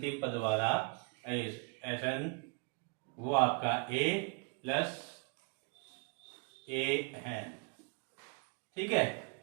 पद वाला Sn, वो आपका a प्लस a है। ठीक है,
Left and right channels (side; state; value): left; quieter; 36.2 dB